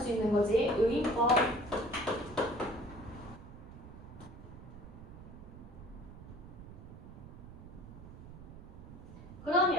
있는 거지. 의인법.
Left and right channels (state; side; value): noise; right; rumble, 15 dB below the sound